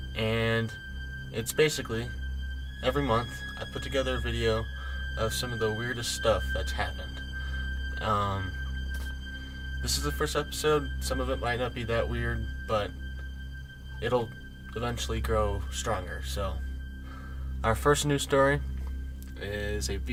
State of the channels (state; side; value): identical; both; correlation 1.00